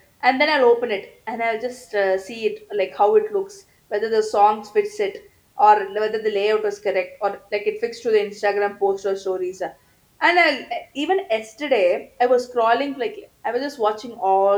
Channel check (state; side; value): identical; both; correlation 1.00